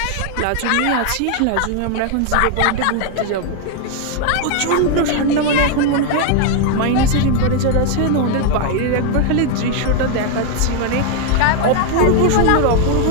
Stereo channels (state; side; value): different; both; correlation 0.01